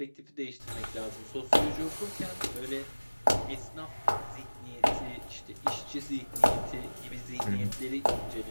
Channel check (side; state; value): both; inverted; correlation -1.00